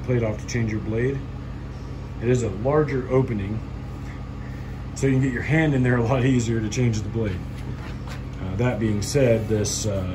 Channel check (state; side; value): identical; both; correlation 1.00